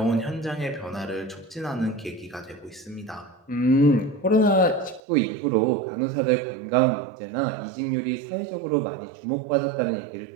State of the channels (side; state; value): left; drops out; at 5.0 s